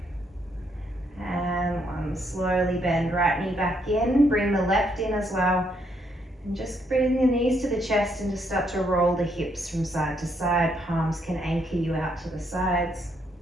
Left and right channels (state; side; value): normal; both; correlation 0.74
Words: and 1. Slowly bend right knee back in, bring the left in as well. And just bring the knees to the chest and just start to roll the hips from side to side. Palms can anchor you out to the sides.